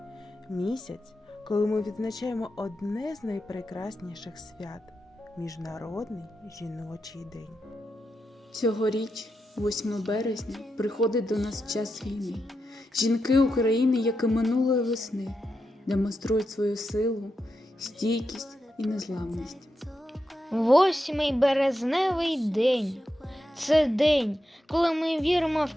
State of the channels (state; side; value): normal; both; correlation 0.87